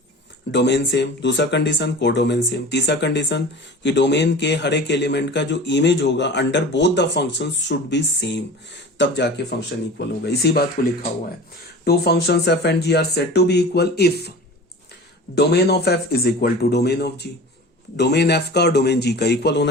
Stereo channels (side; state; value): both; normal; correlation 0.37